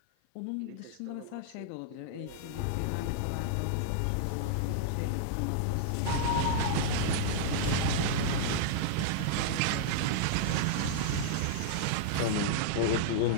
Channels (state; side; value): different; both; correlation -0.01